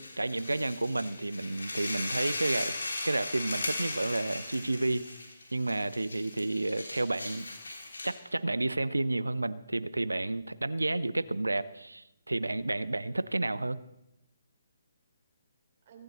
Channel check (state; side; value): inverted; both; correlation -0.97